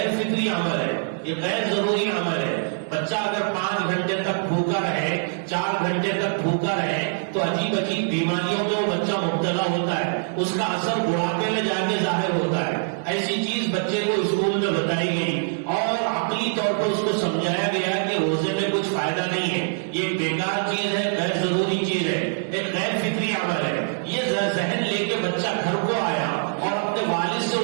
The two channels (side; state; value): left; silent; digital silence